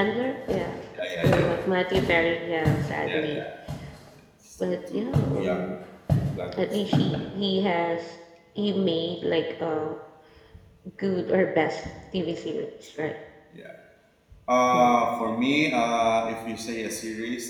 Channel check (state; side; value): identical; both; correlation 1.00